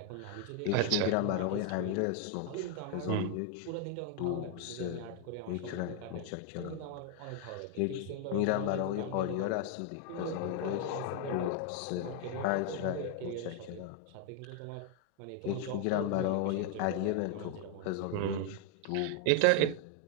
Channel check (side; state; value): both; different; correlation 0.00